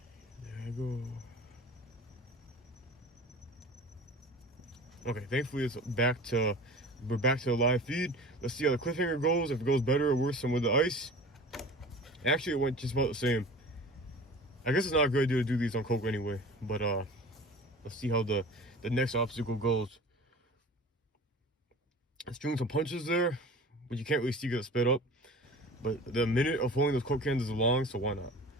there I go. Okay, thankfully we're back to the live feed. Let's see how the cliffhanger goes, if it goes better or worse than with the ice. Actually, it went just about the same. I guess it's not a good idea to do these on Coke anyway, but let's see how the next obstacle goes. It's doing some punches there, but you can't really see because it's sped up. But the minute of holding those Coke cans is long, so why not?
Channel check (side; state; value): both; normal; correlation 0.39